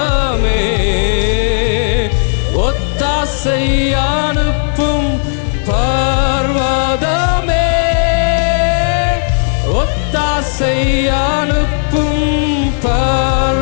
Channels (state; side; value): silent; right; digital silence